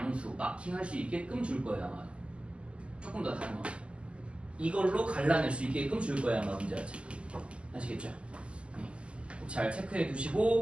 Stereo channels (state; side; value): late; left; 0.054 ms